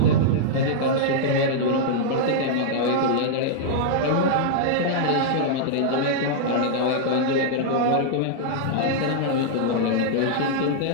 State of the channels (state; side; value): different; both; correlation -0.01